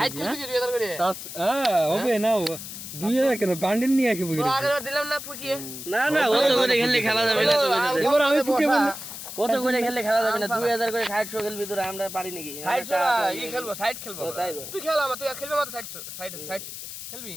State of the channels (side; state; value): left; noise; hiss, 10 dB below the sound